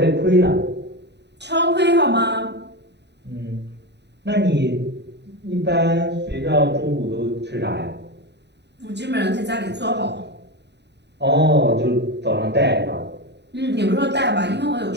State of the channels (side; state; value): left; late; 0.50 ms